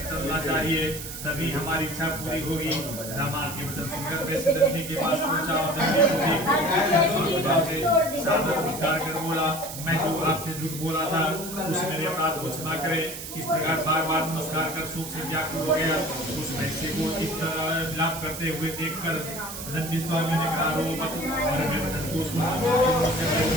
चलना चाहिए, तभी हमारी इच्छा पूरी होगी। दामाद के वचन सुनकर वैसे दंडी के पास पहुंचा और दंडी को सादर नमस्कार कर बोला, मैं जो आपसे झूठ बोला था उस मेरे अपराध को क्षमा करे। इस प्रकार बार बार नमस्कार कर शोक से व्याकुल हो गया। उस वैश्य को इस तरह विलाप करते हुए देखकर दंडी स्वामी ने कहा, रो मत, और मैं वचन को सुनकर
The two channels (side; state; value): right; noise; hiss, 9 dB below the sound